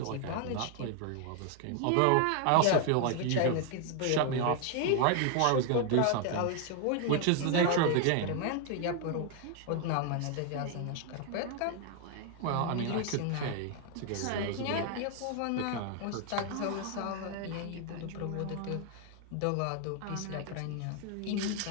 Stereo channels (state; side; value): different; both; correlation 0.00